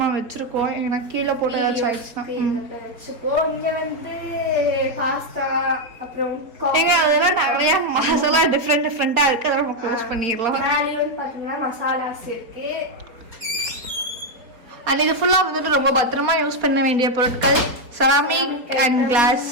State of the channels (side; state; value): left; late; 4.3 ms